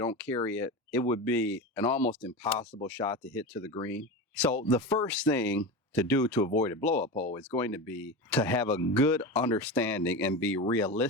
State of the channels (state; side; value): normal; both; correlation 0.24